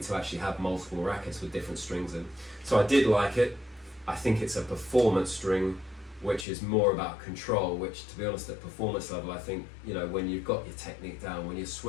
to actually have multiple rackets with different strings in. So I did like it. I think it's a performance string, which is more about control, which, to be honest, at performance level, I think, you know, when you've got your technique down, when you're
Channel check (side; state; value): right; drops out; at 6.5 s